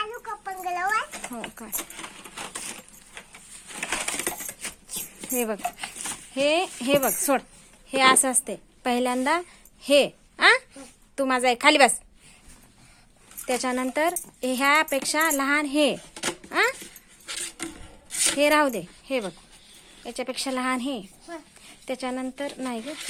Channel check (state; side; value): identical; both; correlation 1.00